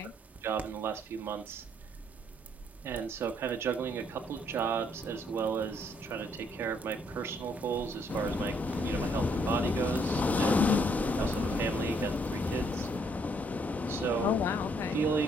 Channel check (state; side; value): normal; both; correlation 0.69